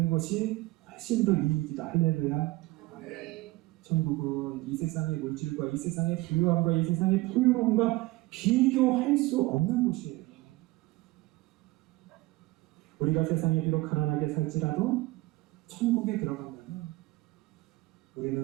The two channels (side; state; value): left; quieter; 20.1 dB